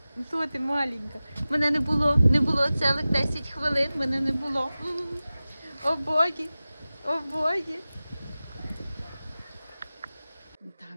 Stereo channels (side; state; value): both; inverted; correlation -0.96